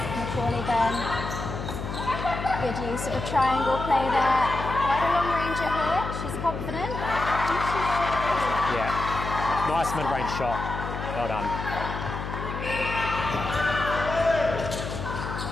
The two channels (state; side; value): noise; left; hum, 6 dB below the sound